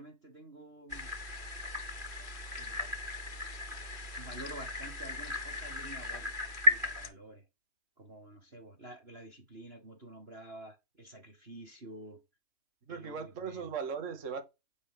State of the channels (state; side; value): late; left; 3.1 ms